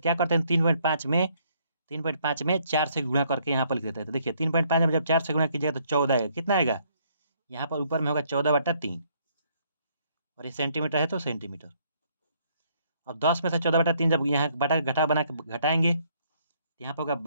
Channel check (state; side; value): inverted; both; correlation -0.67